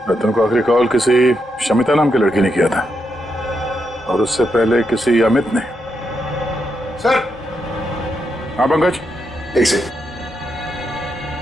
रतन को आखिरी कॉल किसी शमिता नाम की लड़की ने किया था और उससे पहले किसी अमित ने। सर। हाँ पंकज। एक सेकंड,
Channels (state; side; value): normal; both; correlation 0.82